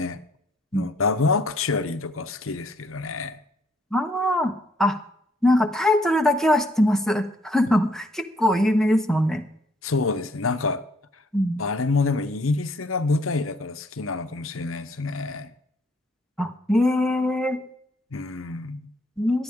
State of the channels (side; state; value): both; normal; correlation 0.67